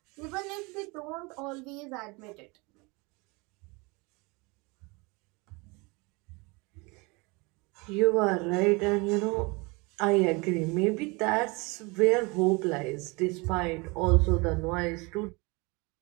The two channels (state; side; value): quieter; left; 27.3 dB